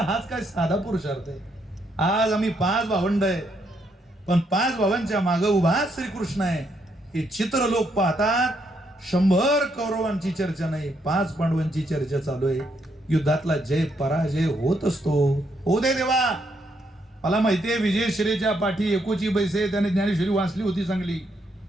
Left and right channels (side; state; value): both; normal; correlation 0.75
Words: हाच काय साधा पुरुषार्थ आहे. आज आम्ही 5 भावंड आहे पण 5 भावांच्या मागे उभा श्रीकृष्ण आहे. हे चित्र लोक पाहतात. 100 कौरवांची चर्चा नाही, 5 पांडवांची चर्चा चालू आहे. युद्धातला जय पराजय होत असतो. हो दे देवा. मला माहितीये विजयश्रीच्या पाठी एकोची बैसे त्याने ज्ञानेश्वरी वाचली होती चांगली.